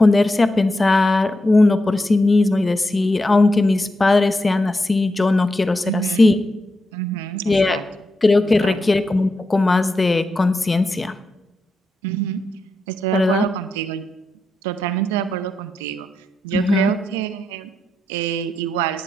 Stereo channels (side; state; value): both; normal; correlation 0.86